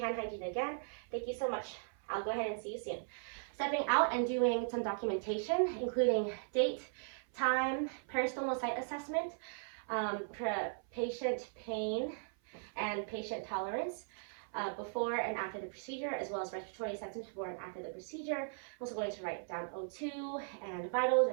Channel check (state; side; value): silent; left; 52 dB below the other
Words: hand hygiene again. Thank you so much. I'll go ahead and see you soon. Stepping out and doing some documentation, including date, time, peristomal site assessment, patient pain, and patient tolerance before and after the procedure, as well as respiratory assessment before and after the procedure. I'm also going to write down O2 and vitals